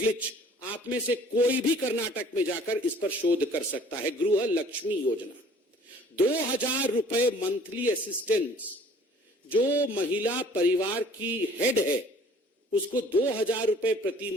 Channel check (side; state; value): both; normal; correlation 0.53